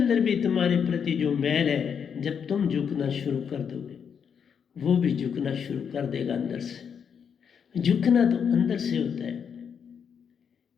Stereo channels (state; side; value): quieter; right; 7.2 dB